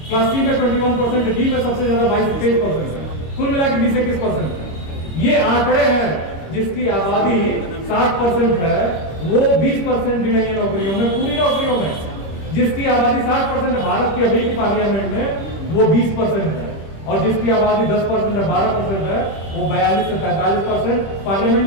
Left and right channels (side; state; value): right; late; 25 ms